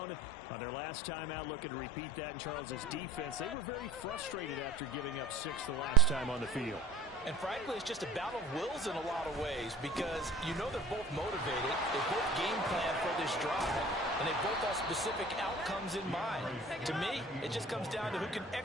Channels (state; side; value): normal; both; correlation 0.43